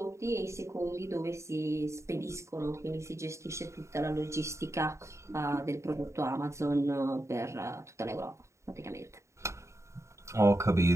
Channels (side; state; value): left; late; 0.14 ms